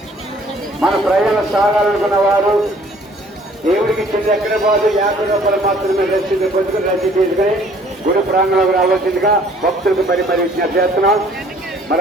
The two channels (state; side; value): normal; both; correlation 0.57